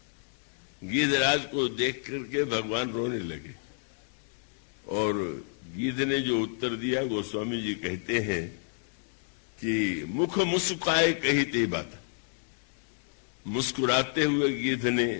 गिरिराज को देख करके भगवान रोने लगे और गीध ने जो उत्तर दिया, गोस्वामी जी कहते हैं कि मुख मुस्काए कही ते बात। मुस्कुराते हुए गीध ने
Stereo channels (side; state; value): right; silent; digital silence